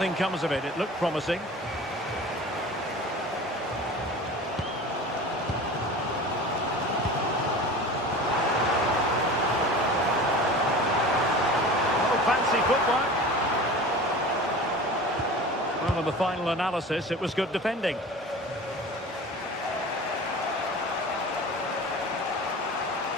comes of it. It looked promising. Oh, fancy footwork. Well, in the final analysis, it was good defending.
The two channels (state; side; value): normal; both; correlation 0.37